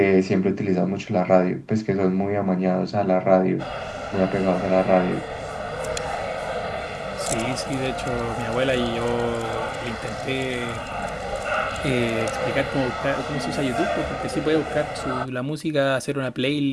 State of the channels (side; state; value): both; identical; correlation 1.00